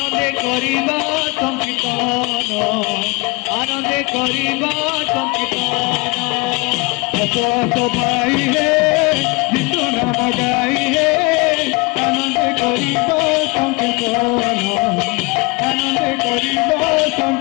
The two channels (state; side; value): quieter; right; 26.8 dB